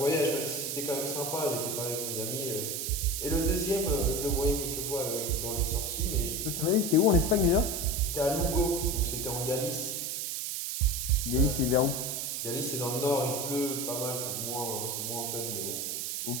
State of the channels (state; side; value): noise; right; hiss, 3 dB below the sound